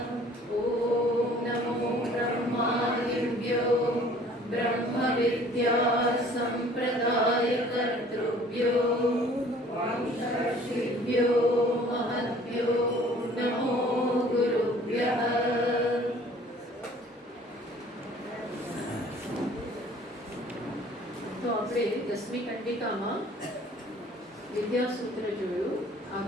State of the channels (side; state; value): both; normal; correlation 0.53